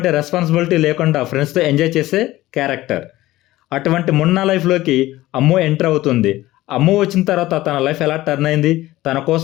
రెస్పాన్సిబిలిటీ లేకుండా ఫ్రెండ్స్తో ఎంజాయ్ చేసే క్యారెక్టర్. అటువంటి మున్నా లైఫ్లోకి అమ్ము ఎంటర్ అవుతుంది. అమ్ము వచ్చిన తర్వాత తన లైఫ్ ఎలా టర్న్ అయింది, తన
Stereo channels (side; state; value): right; quieter; 16.8 dB